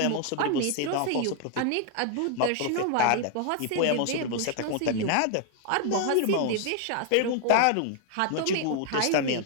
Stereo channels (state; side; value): different; both; correlation 0.00